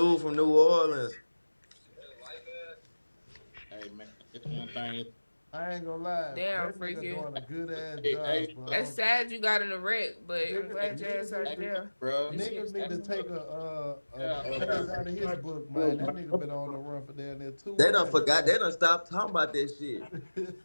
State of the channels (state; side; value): inverted; both; correlation -1.00